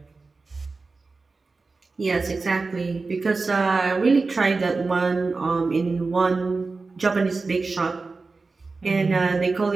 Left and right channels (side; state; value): left; quieter; 4.0 dB